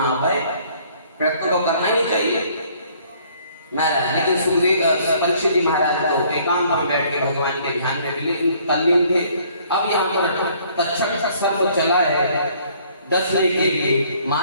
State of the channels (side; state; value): both; inverted; correlation -0.60